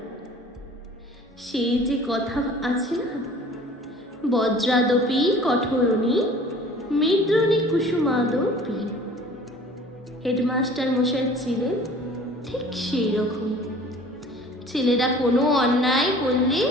সেই যে কথা আছে না, বজ্রাদপি কঠোরণী মৃদ্রণী কুসুমাদপি। হেডমাস্টার মশাই ছিলেন ঠিক সেই রকম। ছেলেরা কোনো অন্যায় করলে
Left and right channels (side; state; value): both; normal; correlation 0.48